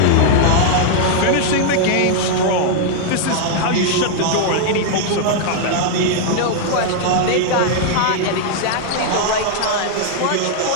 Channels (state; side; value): different; both; correlation -0.01